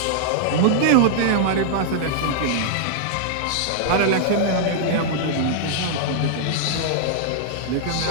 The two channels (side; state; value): both; different; correlation -0.01